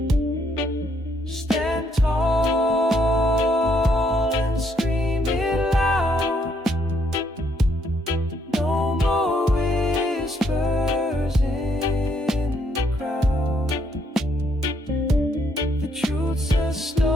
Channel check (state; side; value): normal; both; correlation 0.72